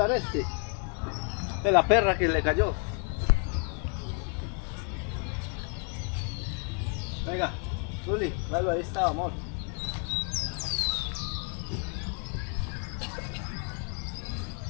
este. De la perra que le cayó. Venga, Zuli, dale, ahí está, amor.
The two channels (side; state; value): right; quieter; 39.7 dB